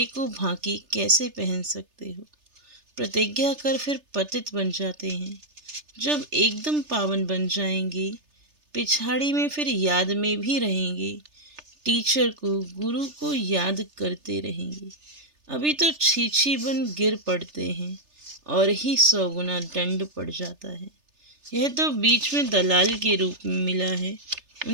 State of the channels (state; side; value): late; left; 3.3 ms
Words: को भांकी कैसे पहन सकते हो? प्रतिज्ञा कर फिर पतित बन जाते हैं। जब एकदम पावन बन जाएंगे पिछाड़ी में फिर याद में भी रहेंगे। टीचर को गुरु को याद करते रहेंगे। अभी तो छीछी बन गिर पड़ते हैं। और ही 100 गुना दंड पड़ जाता है। यह तो बीच में दलाल के रूप में मिला है,